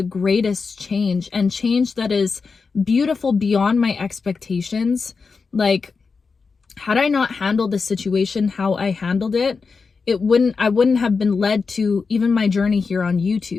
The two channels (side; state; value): right; quieter; 4.8 dB